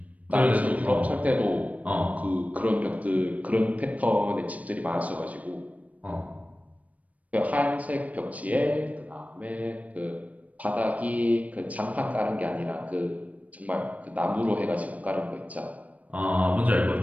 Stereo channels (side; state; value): left; late; 0.069 ms